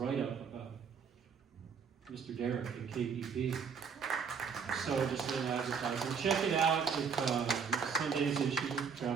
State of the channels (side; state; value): left; quieter; 6.2 dB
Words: about Mr. Derek at KPP. So just a little advertising. Check it out with Sunday's issue,